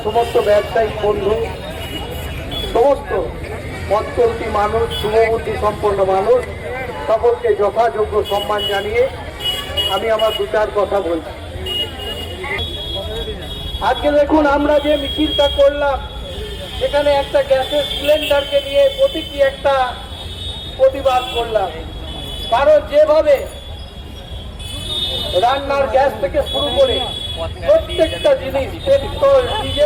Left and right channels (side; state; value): both; identical; correlation 1.00